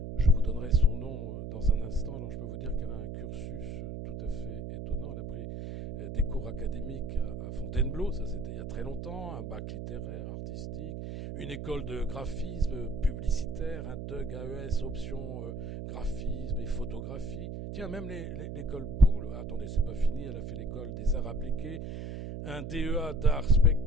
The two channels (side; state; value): right; noise; hum, 6 dB below the sound